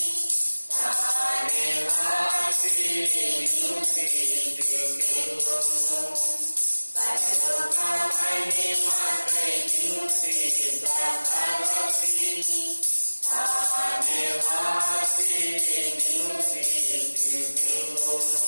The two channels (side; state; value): both; inverted; correlation -1.00